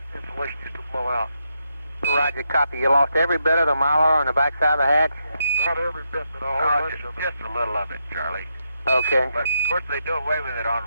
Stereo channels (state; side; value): inverted; both; correlation -0.81